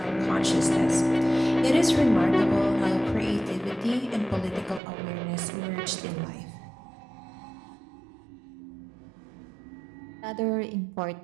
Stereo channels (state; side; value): drops out; left; at 4.8 s